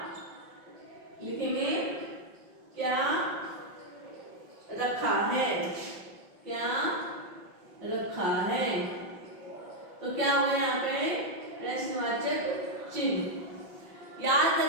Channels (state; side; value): late; left; 5.6 ms